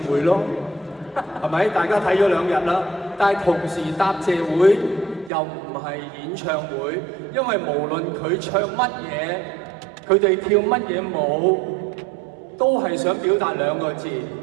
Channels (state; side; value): drops out; left; at 5.3 s